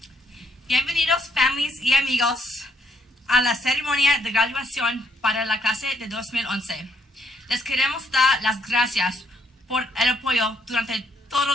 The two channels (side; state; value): both; normal; correlation 0.71